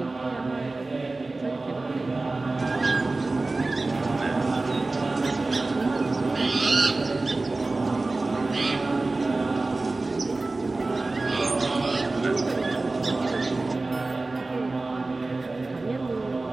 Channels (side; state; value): left; quieter; 3.3 dB